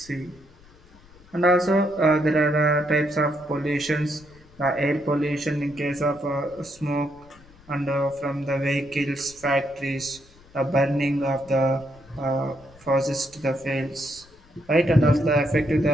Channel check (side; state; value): left; noise; rumble, 26 dB below the sound